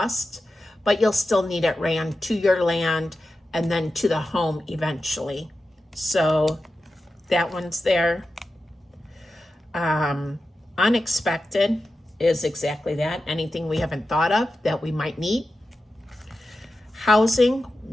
but you'll still need it ran to your land and then to the home eventually. So that one's there. Unexpected is exactly that. Anything we haven't thought of that we might need. Housing,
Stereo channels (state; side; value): normal; both; correlation 0.92